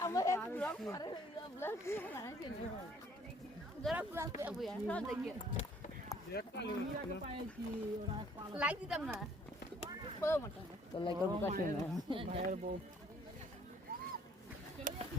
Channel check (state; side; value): normal; both; correlation 0.58